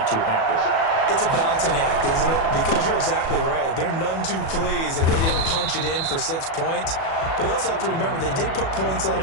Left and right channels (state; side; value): late; right; 37 ms